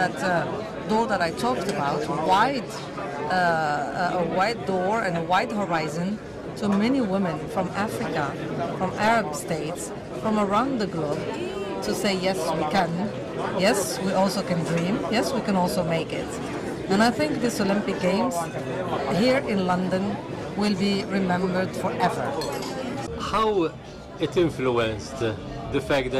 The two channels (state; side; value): identical; both; correlation 1.00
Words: door that I talked about, a wide door and a wide horizon to many women from Africa, from Arab states, from around the globe, to say, yes, we can. Yes, we also can dream. Yes, we can also make it. And I think this Olympic Games here in London will be remembered forever. How it influenced the fact